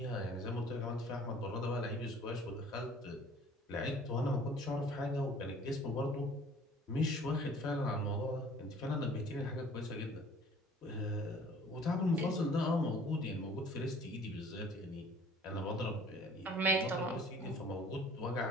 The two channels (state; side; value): normal; both; correlation 0.51